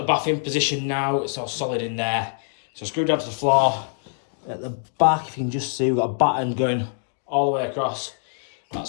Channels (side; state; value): right; silent; 62 dB below the other